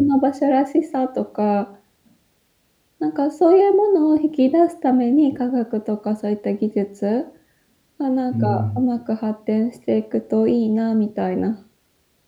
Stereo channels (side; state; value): both; identical; correlation 1.00